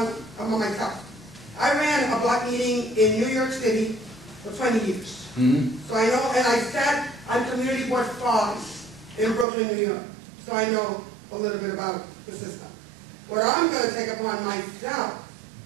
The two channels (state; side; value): drops out; left; at 9.5 s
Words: myself. I ran a block meeting in New York City for 20 years. Mm-hmm. So I know, and I sat on Community Board 5 in Brooklyn, New York. So I know a little bit about the system. What I'm going to take upon myself,